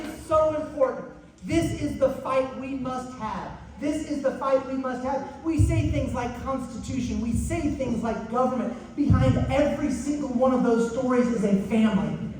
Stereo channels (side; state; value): both; identical; correlation 1.00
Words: so important. This is the fight we must have. This is the fight we must have. We say things like Constitution. We say things like government. Behind every single one of those stories is a family.